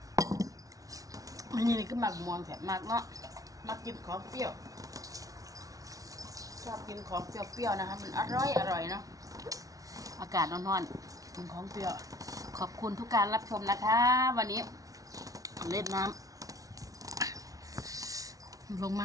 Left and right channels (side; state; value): left; late; 0.17 ms